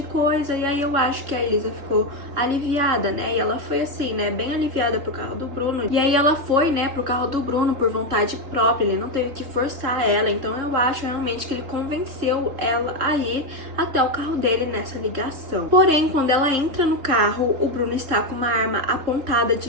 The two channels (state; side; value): late; left; 3.6 ms